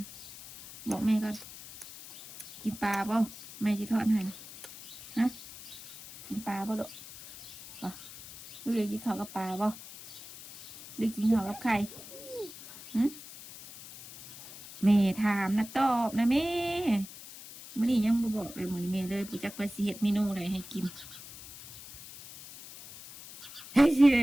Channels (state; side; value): noise; left; hiss, 15 dB below the sound